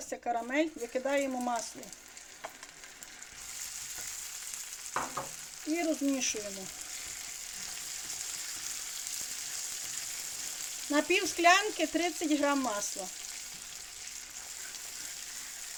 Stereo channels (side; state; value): both; identical; correlation 1.00